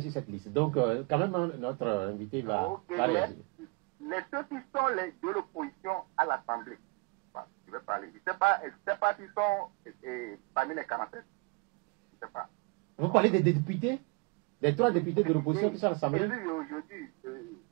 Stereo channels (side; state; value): left; quieter; 29.7 dB